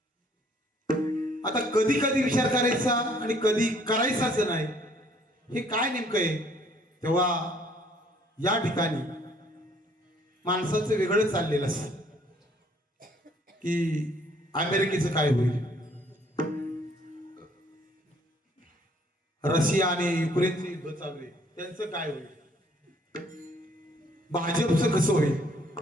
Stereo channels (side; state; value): both; normal; correlation 0.61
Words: आता कधी कधी विचार करायचा आणि कधी करायचाच नाही हे काय नेमकं आहे. तेव्हा या ठिकाणी माणसाचं वेगळं चाललेलं असतं की अमेरिकेचं काय होईल, रशिया आणि युक्रेनचे युद्ध चालू आहे त्यांचं काय होईल, भाजपचं कसं होईल,